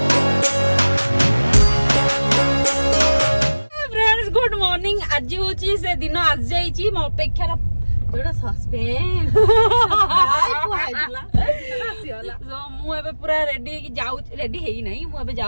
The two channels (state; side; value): inverted; both; correlation -1.00